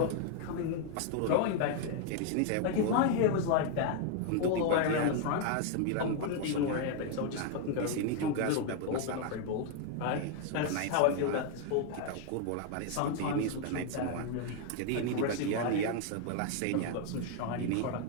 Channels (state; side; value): different; both; correlation 0.00